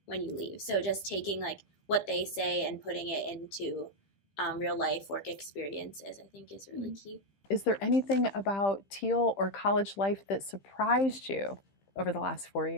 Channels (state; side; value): late; right; 15 ms